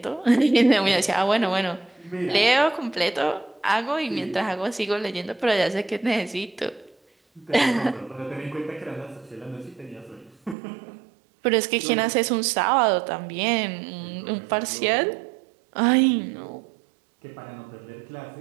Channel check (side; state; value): left; drops out; at 10.6 s